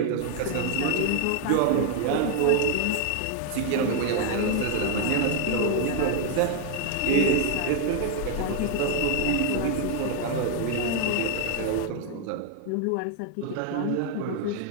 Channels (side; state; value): both; different; correlation 0.00